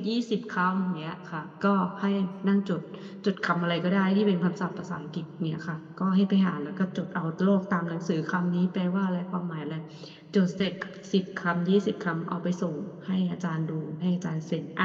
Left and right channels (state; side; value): identical; both; correlation 1.00